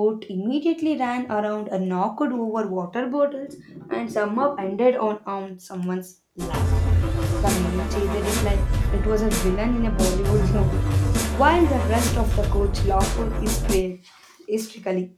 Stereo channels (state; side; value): identical; both; correlation 1.00